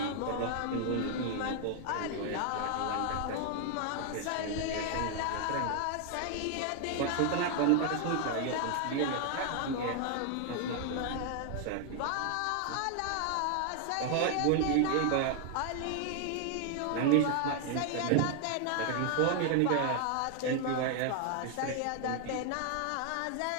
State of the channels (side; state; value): both; different; correlation 0.00